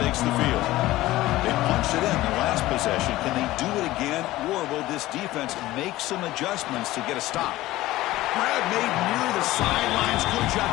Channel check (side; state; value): right; quieter; 16.9 dB